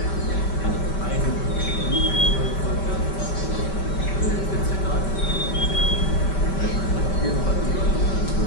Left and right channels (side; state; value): right; late; 5.2 ms